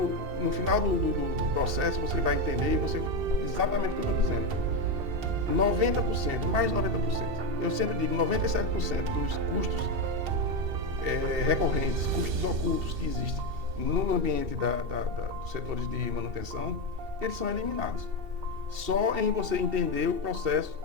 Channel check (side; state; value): left; late; 2.7 ms